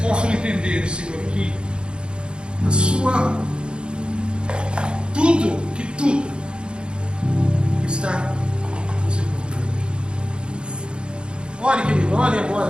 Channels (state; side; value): late; left; 0.053 ms